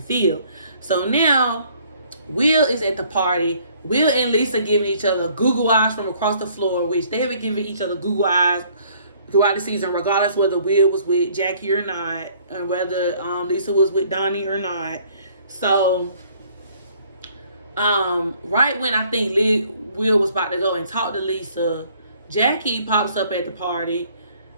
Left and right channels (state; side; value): inverted; both; correlation -0.60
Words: So now, Will is at the party. Will and Lisa giving each other Google eyes from across the floor, which they have been giving each other Google eyes throughout the season, regardless whether Will was with Jackie or not, and whether Lisa was with Donnie or not. So, right when I think Will was about to go and talk to Lisa, Jackie pops up at the party.